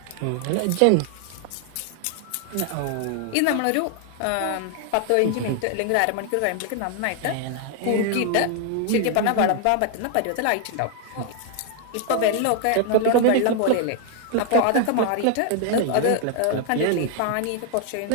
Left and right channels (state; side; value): different; both; correlation 0.00